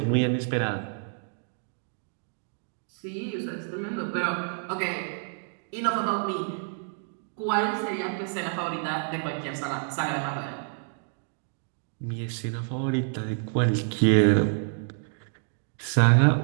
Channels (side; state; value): left; silent; 59 dB below the other